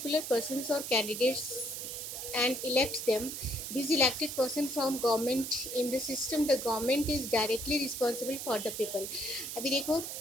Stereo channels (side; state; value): right; noise; hiss, 6 dB below the sound